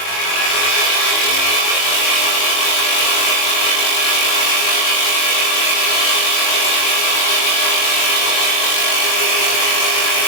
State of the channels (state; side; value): late; right; 22 ms